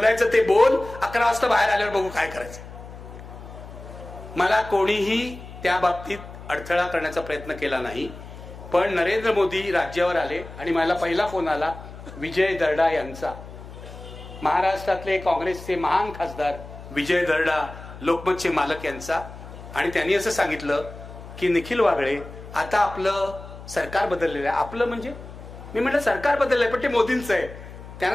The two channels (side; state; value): left; noise; hum, 14 dB below the sound